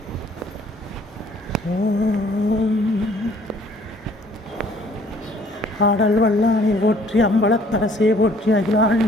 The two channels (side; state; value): both; normal; correlation 0.58